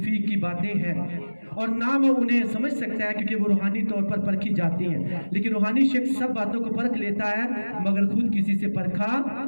की बातें हैं, और ना वो उन्हें समझ सकता है, क्योंकि वो रूहानी तौर पर परखी जाती हैं। लेकिन रूहानी शख्स सब बातों को परख लेता है, मगर खुद किसी से परखा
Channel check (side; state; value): both; inverted; correlation -1.00